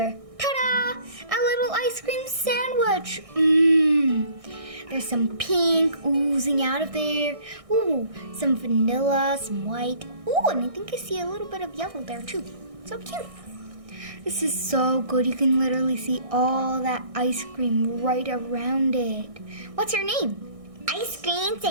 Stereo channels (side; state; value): left; late; 1.6 ms